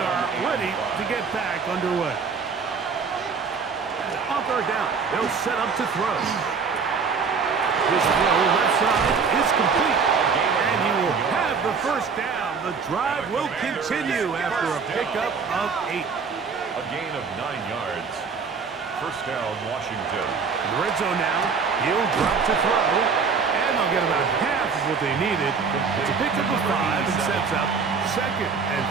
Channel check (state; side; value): quieter; left; 5.4 dB